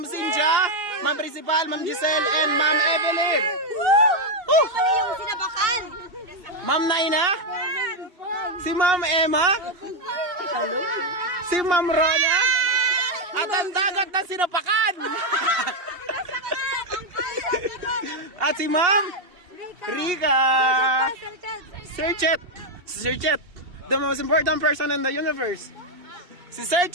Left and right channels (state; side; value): late; left; 2.8 ms